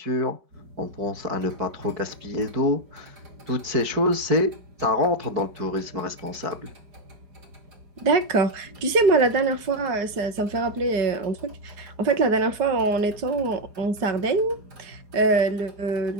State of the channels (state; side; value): late; left; 4.8 ms